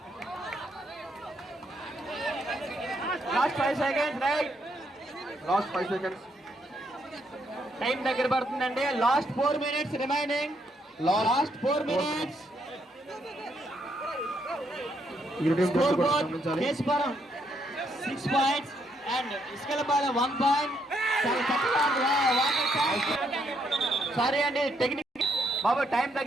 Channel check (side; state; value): both; normal; correlation 0.74